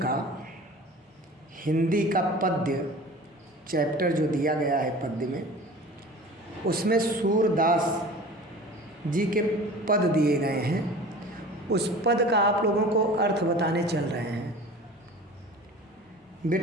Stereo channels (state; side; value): normal; both; correlation 0.40